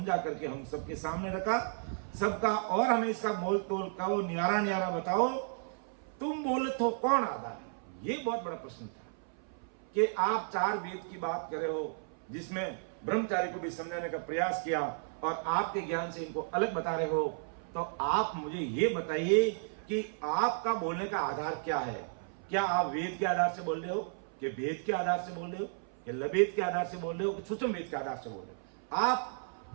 करके हम सबके सामने रखा सबका, और हमें इसका मोल तोल कहो, न्यारा न्यारा बताओ, तुम बोले तो कौन आधार है। ये बहुत बड़ा प्रश्न था कि आप 4 वेद की बात कर रहे हो जिसमें ब्रह्मचारी को भी समझाने का प्रयास किया और आपके ज्ञान से इनको अलग बता रहे हो, तो आप मुझे ये बताइए कि आपका बोलने का आधार क्या है। क्या आप वेद के आधार से बोल रहे हो, कि वेद के आधार से बोल रहे हो, कि लवेद के आधार से बोल रहे हो, कि सूक्ष्म वेद के आधार से बोल रहे हो।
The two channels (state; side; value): silent; left; 55 dB below the other